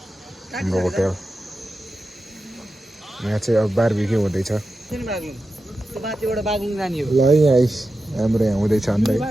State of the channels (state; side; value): normal; both; correlation 0.91